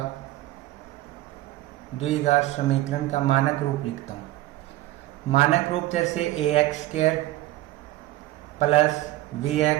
समीकरण का मानक रूप लिखता हूँ। मानक रूप जैसे ax² plus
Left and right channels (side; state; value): left; quieter; 16.4 dB